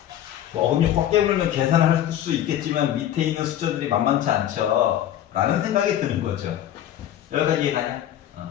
어금니 꽉 깨물면 계산할 수 있겠지만 밑에 있는 숫자들이 만만치 않죠 라는 생각이 드는 거죠. 여기까지 이해가냐?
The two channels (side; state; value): right; quieter; 11.6 dB